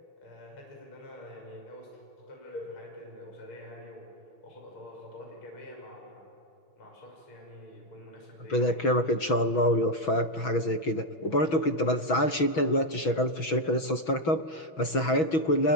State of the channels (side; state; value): right; late; 6.2 ms